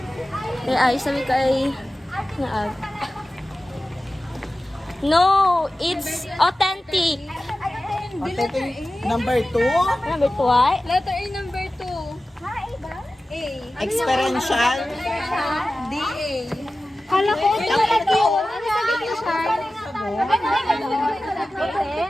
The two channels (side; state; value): both; normal; correlation 0.95